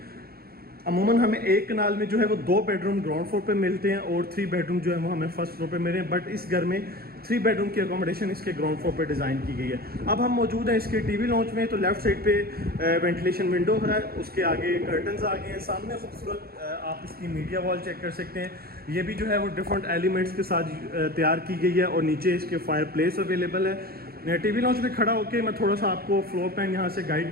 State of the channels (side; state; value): left; late; 0.44 ms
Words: अमूमन हमें एक कनाल में जो है वो 2 बेडरूम ग्राउंड फ्लोर पे मिलते हैं और 3 बेडरूम जो है वो हमें फर्स्ट फ्लोर पे मिले हैं। बट इस घर में 3 बेडरूम की अकोमोडेशन इसके ग्राउंड फ्लोर पे डिज़ाइन की गई है। अब हम मौजूद हैं इसके टीवी लॉन्च में। तो लेफ्ट साइड पे वेंटिलेशन विंडो है, उसके आगे कर्टन्स आ गए हैं। सामने खूबसूरत आप इसकी मीडिया वॉल चेक कर सकते हैं। ये भी जो है वो डिफरेंट एलिमेंट्स के साथ तैयार की गई है। और नीचे इसके फायर प्लेस अवेलेबल है। टीवी लॉन्च में खड़ा होकर मैं थोड़ा सा आपको फ्लोर प्लान यहाँ से गाइड